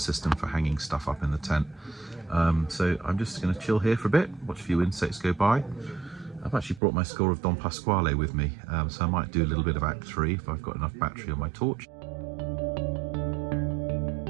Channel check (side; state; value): left; drops out; at 6.8 s